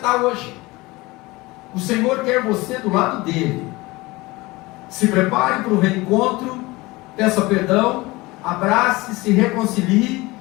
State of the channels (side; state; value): right; quieter; 21.7 dB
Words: hoje. O Senhor quer você do lado dele. Se prepare para o reencontro, peça perdão, abrace, se reconcilie